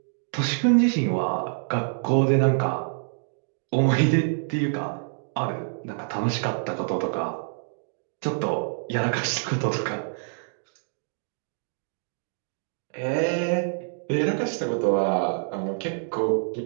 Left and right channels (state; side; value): silent; left; digital silence